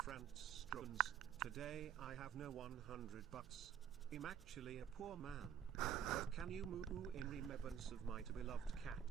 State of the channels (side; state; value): left; quieter; 9.4 dB